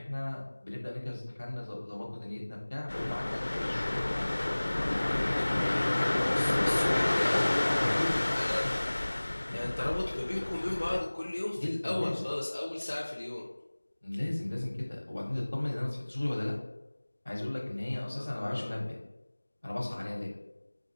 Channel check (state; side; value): inverted; both; correlation -1.00